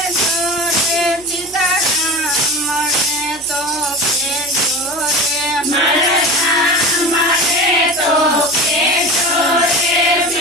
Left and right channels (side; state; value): right; noise; hum, 25 dB below the sound